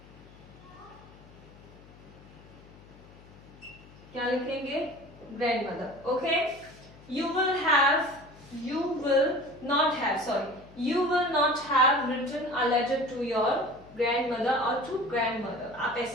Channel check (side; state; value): left; noise; hum, 22 dB below the sound